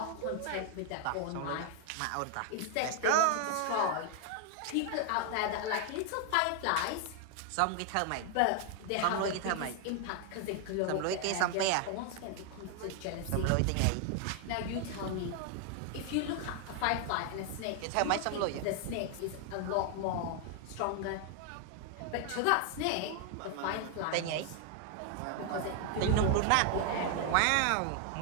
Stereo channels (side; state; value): both; different; correlation 0.00